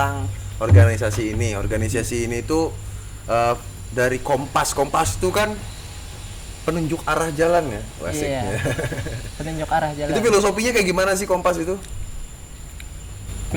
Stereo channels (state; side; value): identical; both; correlation 1.00